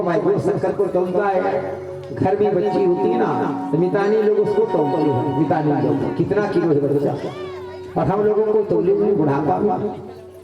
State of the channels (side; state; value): both; identical; correlation 1.00